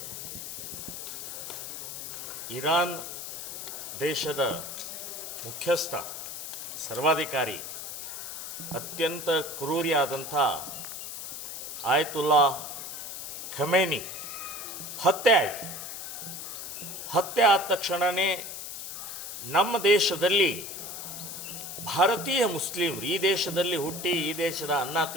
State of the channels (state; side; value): noise; left; hiss, 8 dB below the sound